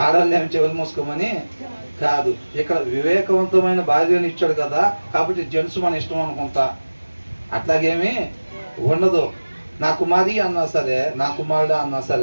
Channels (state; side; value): inverted; both; correlation -1.00